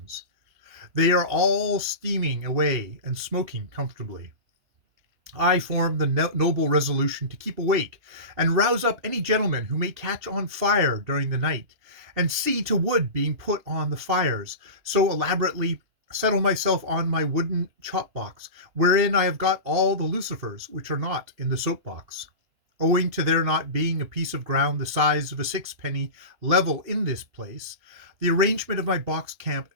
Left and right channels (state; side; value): late; left; 2.8 ms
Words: They are all steaming away and smoking comfortably. I form the noble resolution to keep awake and rouse up any gentleman who may catch on fire during the night, and see to wood being put on the fires, so elaborately settle myself on my wooden chop box, wherein I have got all the lucifers which are not in the soap box. Owing to there not being a piece of ground the size of a 6-penny level in this place, the arrangement of my box camp